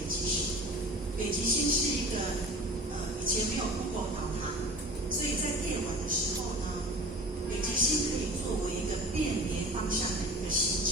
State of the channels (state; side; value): normal; both; correlation 0.39